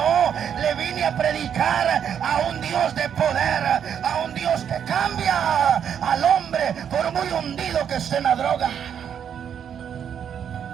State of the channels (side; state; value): left; quieter; 8.4 dB